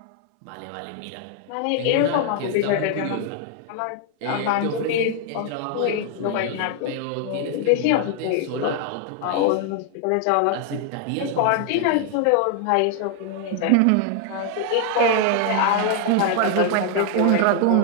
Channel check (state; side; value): different; both; correlation 0.00